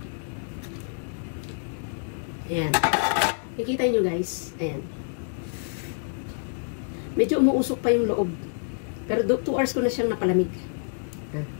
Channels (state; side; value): silent; right; digital silence